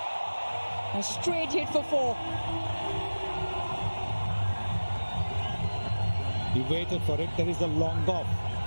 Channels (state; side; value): inverted; both; correlation -1.00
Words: A straight hit for 4. He waited for it. There is a long off.